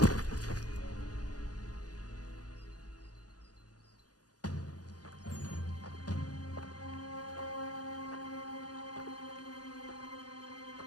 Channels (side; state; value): right; late; 0.68 ms